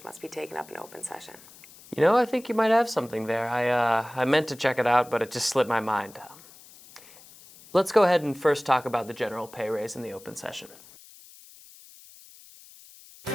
must be taken up in open session. You know, I think you might have something there. I meant to check it out, but it just slipped my mind. Let's go ahead and first talk about the general pay raise in the open session.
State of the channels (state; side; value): noise; left; hiss, 22 dB below the sound